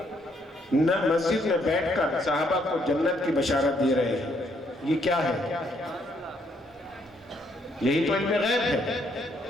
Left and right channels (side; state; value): both; normal; correlation 0.71